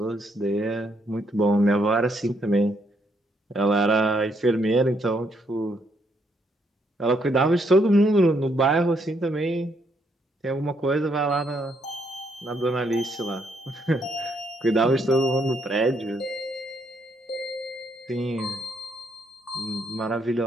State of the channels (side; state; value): both; normal; correlation 0.74